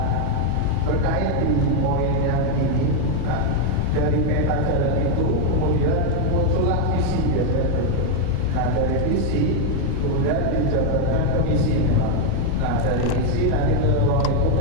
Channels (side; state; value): both; different; correlation 0.01